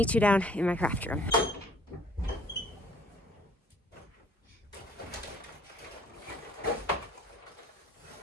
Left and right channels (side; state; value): both; normal; correlation 0.56